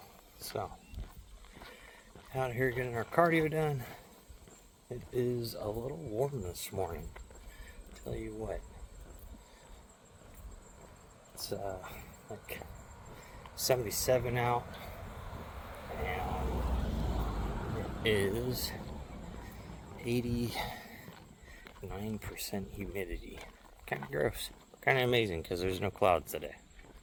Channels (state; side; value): identical; both; correlation 1.00